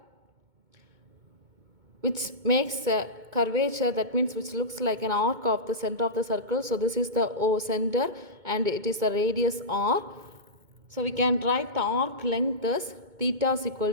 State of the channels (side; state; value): left; late; 2.2 ms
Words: which makes a curvature, that means which looks like an arc of the center of the circle. So this is the O center and it is the radius r. So we can write the arc length as theta is